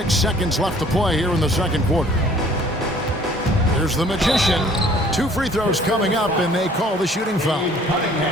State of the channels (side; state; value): both; normal; correlation 0.55